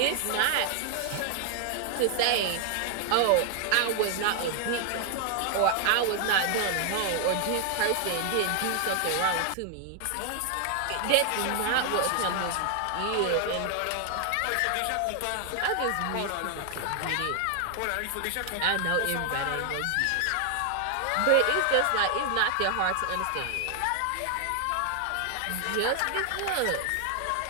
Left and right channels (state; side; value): different; both; correlation 0.00